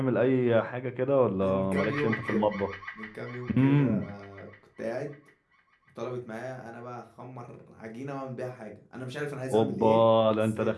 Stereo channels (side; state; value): both; identical; correlation 1.00